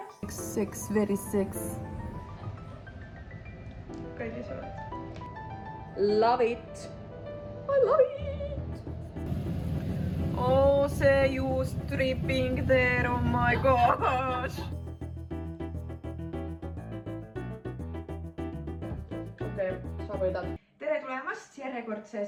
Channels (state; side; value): identical; both; correlation 1.00